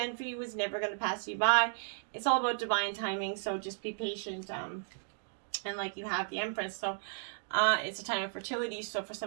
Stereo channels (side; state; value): left; silent; digital silence